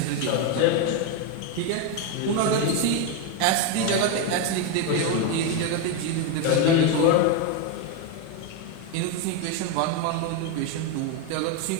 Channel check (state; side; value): different; both; correlation 0.02